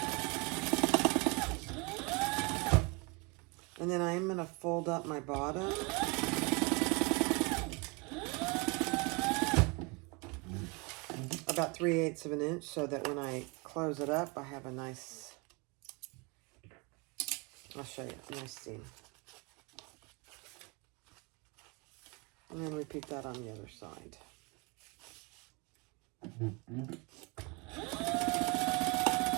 And then I'm going to fold up my bottom. About 3/8 of an inch so that when I close it up, I have a nice, I'll show you, a nice seam. And then repeat that on the other side.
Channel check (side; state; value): left; quieter; 29.4 dB